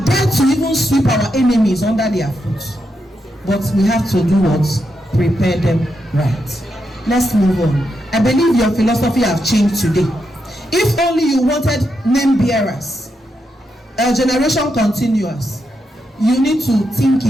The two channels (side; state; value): both; normal; correlation 0.83